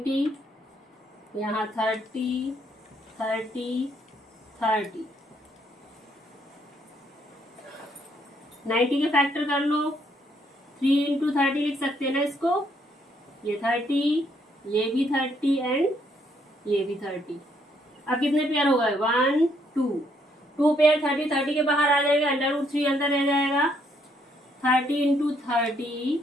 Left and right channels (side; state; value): both; normal; correlation 0.71